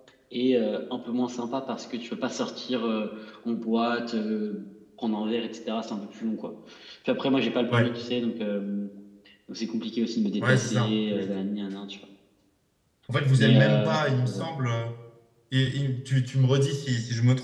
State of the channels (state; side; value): identical; both; correlation 1.00